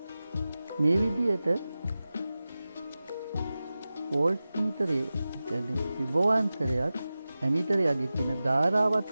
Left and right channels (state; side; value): inverted; both; correlation -0.95